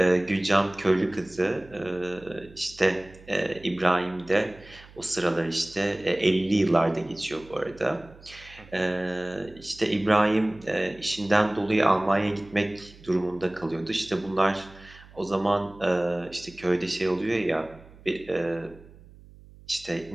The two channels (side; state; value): right; noise; hum, 22 dB below the sound